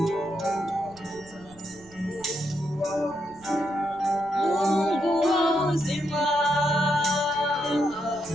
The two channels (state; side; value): noise; right; rumble, 24 dB below the sound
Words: Mungu wa uzima,